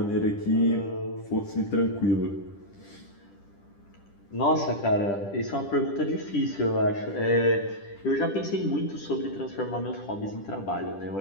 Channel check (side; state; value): right; late; 10 ms